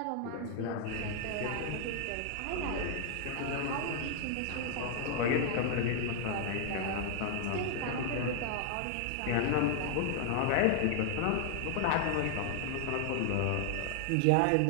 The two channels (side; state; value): both; different; correlation 0.00